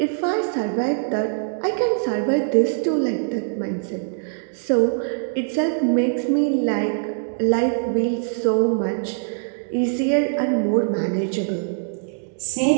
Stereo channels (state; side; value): silent; left; digital silence